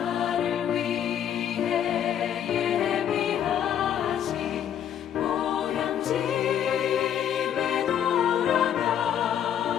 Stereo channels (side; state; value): right; quieter; 9.6 dB